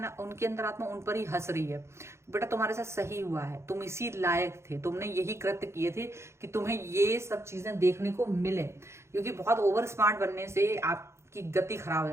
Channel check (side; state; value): left; late; 0.13 ms